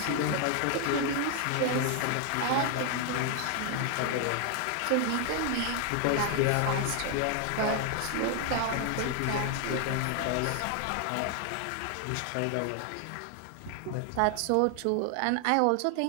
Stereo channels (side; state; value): both; different; correlation 0.00